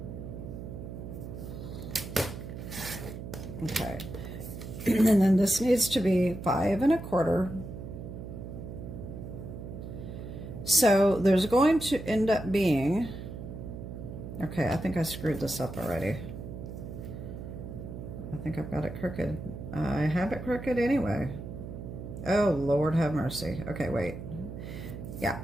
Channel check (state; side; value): noise; right; hum, 9 dB below the sound